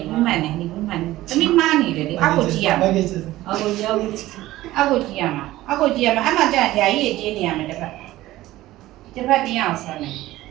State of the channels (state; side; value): quieter; left; 16.3 dB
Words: တမိမားနေတယ်လေအောက်ကိုကြည့်ရမှာအောက်ကိုကြည့်ရမှာအဲ့မှာကြာဓာကြီးကြီးနေရမယ်တစ်ဖက်တင်းအောင်ဆက်မယ်